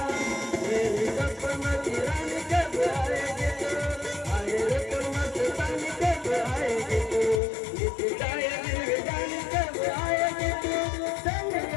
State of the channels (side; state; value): right; drops out; at 7.4 s